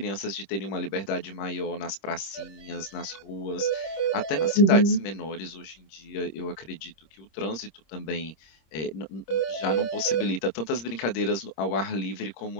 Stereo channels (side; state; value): right; late; 26 ms